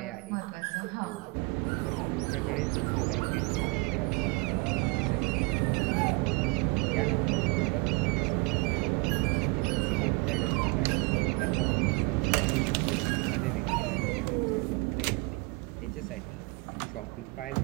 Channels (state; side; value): quieter; left; 27.6 dB